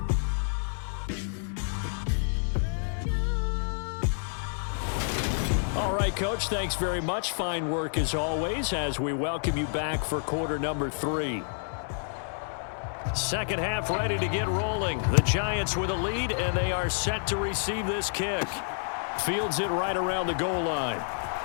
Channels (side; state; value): right; silent; 59 dB below the other